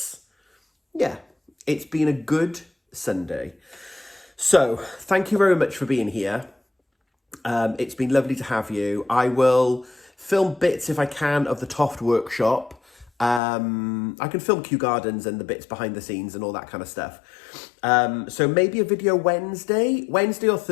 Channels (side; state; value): right; drops out; at 13.4 s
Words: been a good Sunday. So thank you very much for being here. It's been lovely to have you. I will film bits if I can of the Toft workshop. I can film Kew Gardens and the bits behind the scenes and all that kind of stuff. So maybe a video Wednesday or